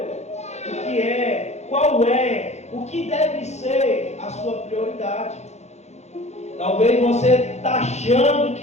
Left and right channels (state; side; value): late; right; 0.32 ms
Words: o que é, qual é, o que deve ser a sua prioridade. Talvez você está achando